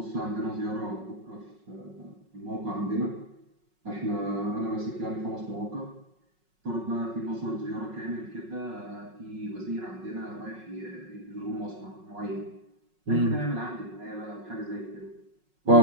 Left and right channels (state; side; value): late; left; 5.4 ms